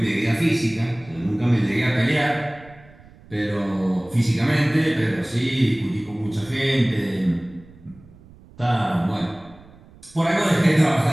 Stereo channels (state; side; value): noise; right; rumble, 23 dB below the sound